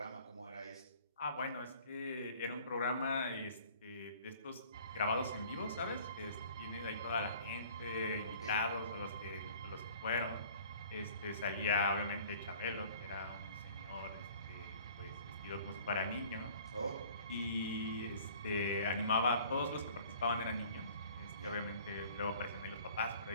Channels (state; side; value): inverted; both; correlation -0.51